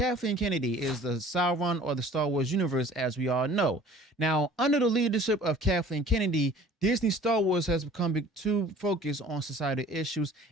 Kennedy is the Sauron or the Star Wars universe, as we all know. Now, under the leadership of Kathleen Kennedy, Disney Star Wars has become too focused on societal issues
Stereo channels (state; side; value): normal; both; correlation 0.49